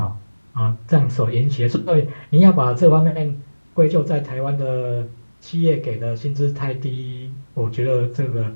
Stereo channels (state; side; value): inverted; both; correlation -1.00